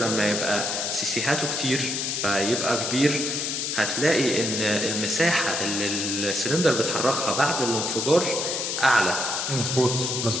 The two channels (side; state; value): left; noise; hiss, 1 dB below the sound